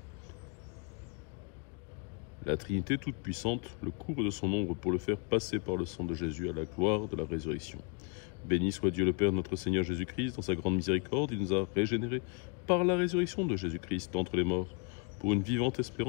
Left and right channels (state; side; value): quieter; right; 34.4 dB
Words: La Trinité toute-puissante le couvre de son ombre pour le faire passer par le sang de Jésus à la gloire de la résurrection. Béni soit Dieu le Père, notre Seigneur Jésus-Christ, dans sa grande miséricorde, il nous a régénérés par la résurrection de Jésus-Christ d'entre les morts, pour une vivante